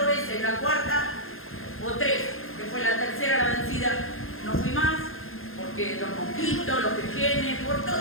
veces, la cuarta o 3, que fue la tercera la vencida, no fui más, porque los mosquitos, los pequeños, por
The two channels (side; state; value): right; late; 0.60 ms